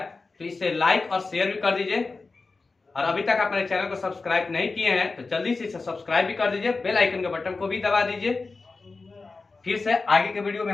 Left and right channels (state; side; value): quieter; right; 4.0 dB